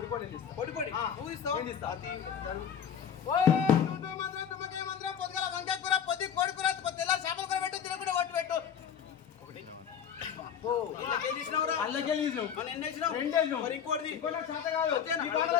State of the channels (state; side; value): quieter; right; 8.3 dB